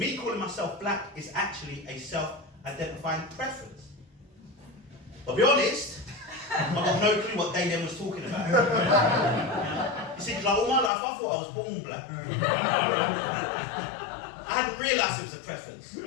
calling myself black is actually a self-identifying preference. I'll be honest, I've got no clue what they then was talking about. You see, like all my life I thought I was born black. I hadn't realised it was a preference. You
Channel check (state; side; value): drops out; right; at 10.9 s